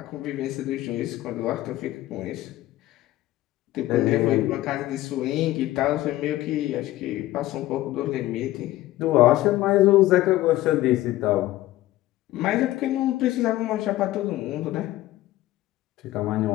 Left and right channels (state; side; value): quieter; right; 16.0 dB